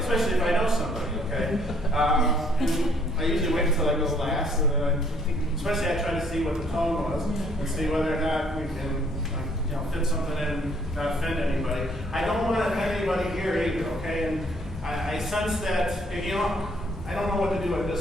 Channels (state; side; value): normal; both; correlation 0.64